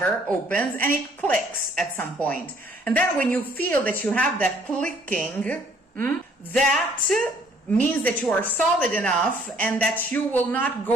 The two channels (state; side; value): normal; both; correlation 0.61